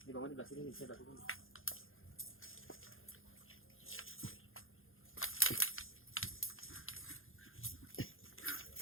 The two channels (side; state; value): right; late; 0.60 ms